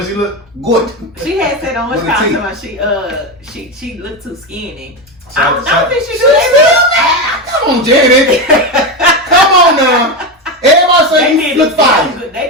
she look good. She had said on her time she looked too skinny. I don't think she do that. Come on, Janet. Come on now. Everybody say you look fine. They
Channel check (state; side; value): normal; both; correlation 0.15